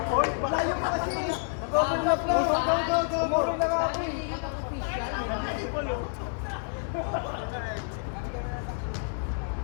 Malayo pa kasi! Nag-overlap lang! Umurong na nga ako eh!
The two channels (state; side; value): silent; right; 59 dB below the other